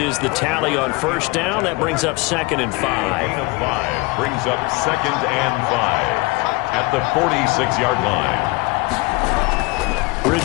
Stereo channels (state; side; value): quieter; right; 24.6 dB